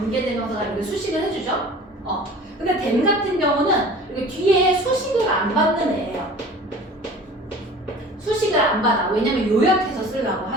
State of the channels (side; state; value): both; normal; correlation 0.43